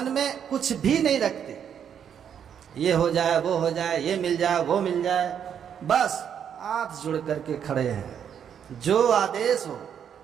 में कुछ भी नहीं रखते, ये हो जाए वो हो जाए, ये मिल जाए वो मिल जाए, बस हाथ जोड़ करके खड़े हैं, जो आदेश हो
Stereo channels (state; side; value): quieter; left; 8.4 dB